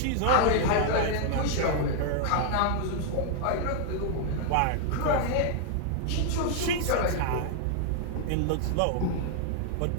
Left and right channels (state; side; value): different; both; correlation 0.00